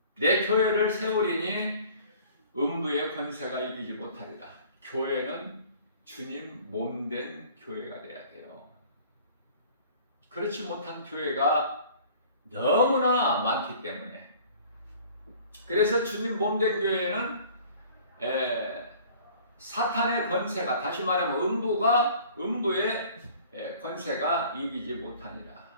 내 교회를 세우리니 음부의 권세가 이기지 못하리라. 교회는 주님 몸된 교회가 돼야 돼요. 그렇지 못한 교회가 너무나 많기 때문에, 그래서 주님 몸된 교회는 사탄의 권세가, 다시 말하면 음부의 권세가 이기지 못하니라.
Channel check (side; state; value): both; inverted; correlation -0.50